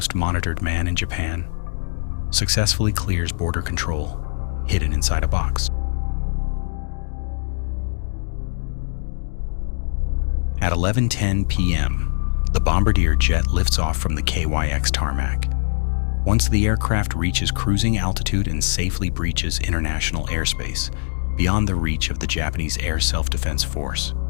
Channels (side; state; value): right; silent; digital silence